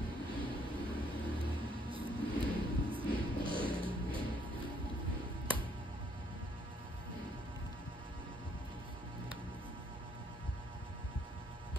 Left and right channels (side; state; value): both; normal; correlation 0.67